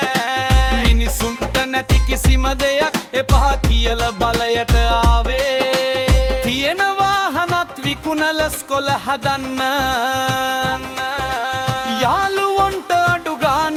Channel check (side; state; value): both; identical; correlation 1.00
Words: මිනිසුන්ට නැති කිසිම දෙයක් එපා කියල බලයට ආවේ. තියෙන වාහනත් විකුණල ස්කොල හදන්න. යාළුවොන්ට අඩු